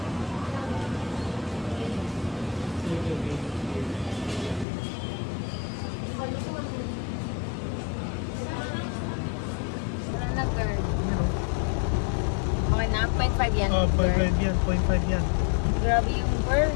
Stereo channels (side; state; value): right; drops out; at 4.7 s